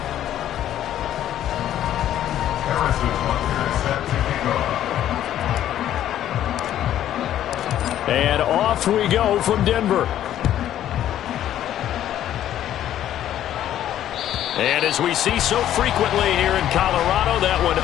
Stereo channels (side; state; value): right; quieter; 11.7 dB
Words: And off we go from Denver. And as we see so frequently here in Colorado, that one